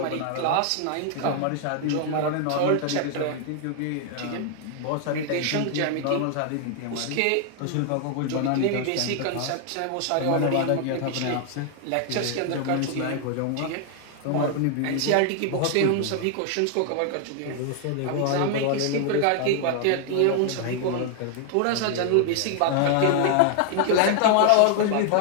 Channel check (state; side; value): different; both; correlation 0.00